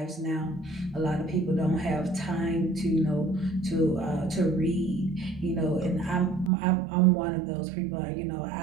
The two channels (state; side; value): drops out; left; at 6.5 s